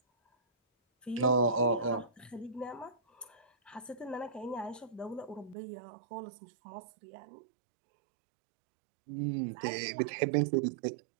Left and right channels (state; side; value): drops out; left; at 5.6 s